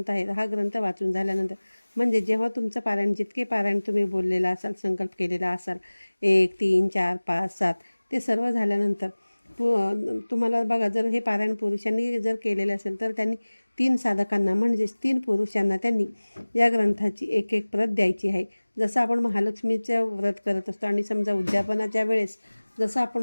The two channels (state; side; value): inverted; both; correlation -1.00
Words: आहे हा ग्रंथ वाचून झाल्यानंतर म्हणजे जेव्हा तुमचं पारायण, जितके पारायण तुम्ही बोललेला असाल, संकल्प केलेला असाल, 1 3 4 5 7 ते सर्व झाल्यानंतर तुम्हाला बघा, जर हे पारायण पुरुषांनी जर केलेले असेल तर त्यांनी 3 साधकांना म्हणजेच 3 पुरुषांना त्यांनी या ग्रंथाची एक एक प्रत द्यायची आहे. जसं आपण महालक्ष्मीचं व्रत करत असतो आणि समजा उद्यापनाच्या वेळेस जसं